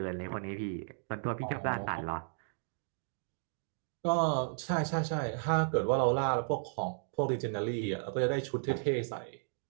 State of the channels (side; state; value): left; silent; digital silence